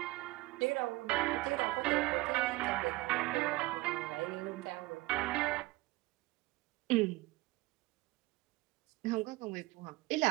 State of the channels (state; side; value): quieter; left; 20.2 dB